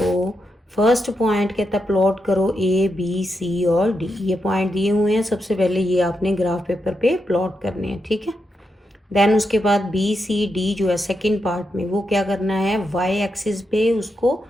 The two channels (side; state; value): both; normal; correlation 0.85